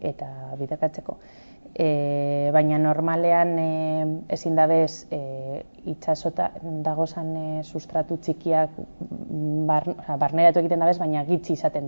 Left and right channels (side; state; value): both; inverted; correlation -1.00